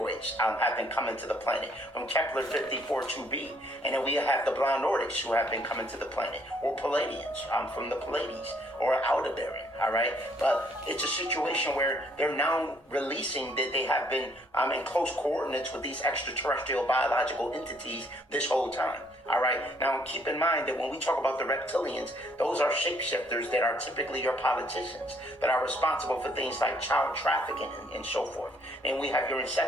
have been coming to the planet from Kepler 54-2b. And then we have the blind Nordics who have been coming to the planet, or Palladians from the Pallades, or Aldebaran, all right? But it's a situation where they're now releasing that they have been in close coordinates with these extraterrestrial biological entities this whole time. All right. Now, keep in mind that when we talk about the reptilians, those are shapeshifters that are typically your politicians that are responsible for things like child trafficking and so forth. And we have your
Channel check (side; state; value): both; normal; correlation 0.66